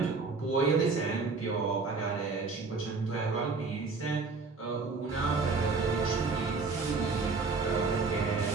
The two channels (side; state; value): left; quieter; 4.3 dB